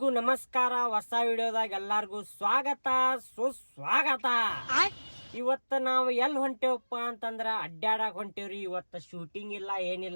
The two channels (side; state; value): both; inverted; correlation -1.00